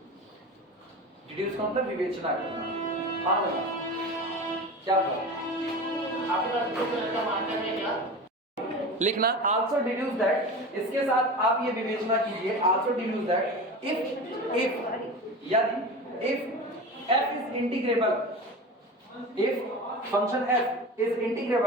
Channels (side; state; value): both; normal; correlation 0.30